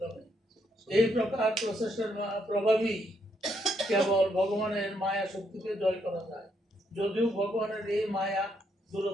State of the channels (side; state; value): both; normal; correlation 0.75